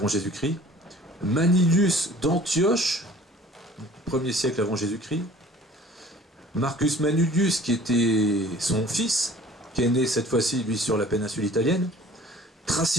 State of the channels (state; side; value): normal; both; correlation 0.49